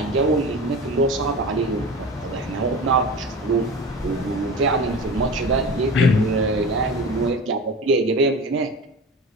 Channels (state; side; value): normal; both; correlation 0.32